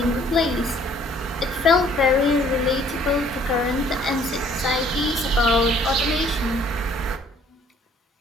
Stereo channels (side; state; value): both; normal; correlation 0.59